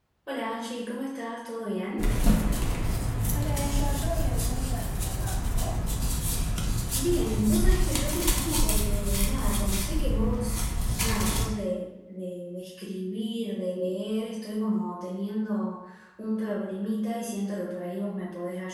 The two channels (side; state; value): both; identical; correlation 1.00